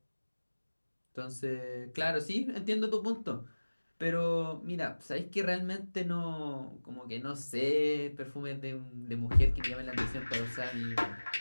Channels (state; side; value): inverted; both; correlation -1.00